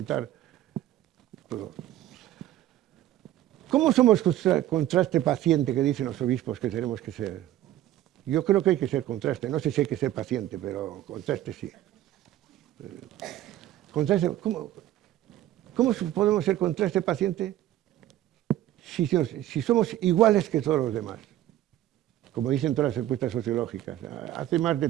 todo. ¿Cómo somos contraste paciente que dicen los obispos que tenemos que ser? Yo creo que hay que ser contraste. No sé si hay que ser paciente, pero contraste sí. Contraste, ¿cómo podemos ser contraste paciente si somos iguales que todos los demás? Como dicen todas las encuestas sociológicas. Hace más de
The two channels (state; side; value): quieter; left; 13.4 dB